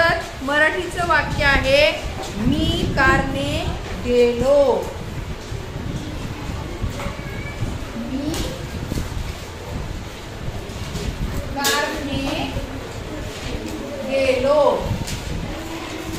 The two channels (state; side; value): identical; both; correlation 1.00